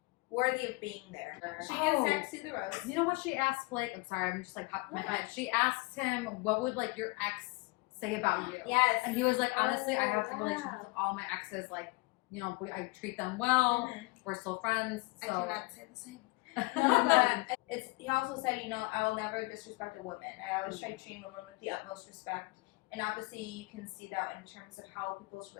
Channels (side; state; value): right; quieter; 25.6 dB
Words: worthy of being there. She Oh. gives Zach see the rose. You know what she asked Blake? I'm sorry, I'm just like popping my head. She asked him, "What would like your ex say about you?" Yes. And he was like, "Honestly, I Oh, have yeah. relationships with all my exes. Like, you know, I treat them well. Mhm. We're still friends." I So cannot say the same. No, but it's. He also said, you know, I will never disrespect a woman. I always try treating women with the utmost respect. And obviously, you can see that in terms of how people's